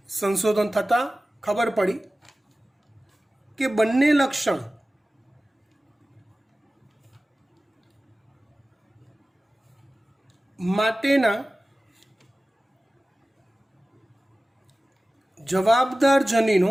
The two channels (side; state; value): both; normal; correlation 0.96